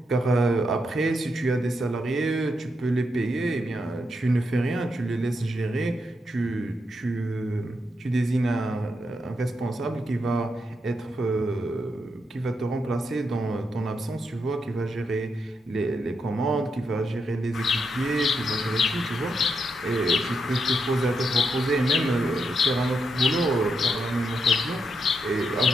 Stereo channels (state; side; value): normal; both; correlation 0.82